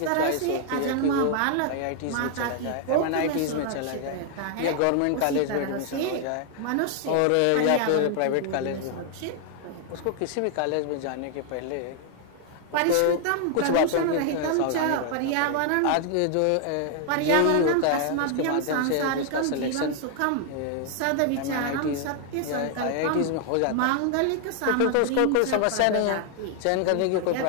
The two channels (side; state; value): both; different; correlation 0.00